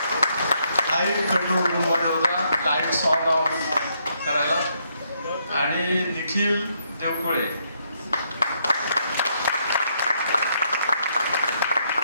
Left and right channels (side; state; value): both; inverted; correlation -0.75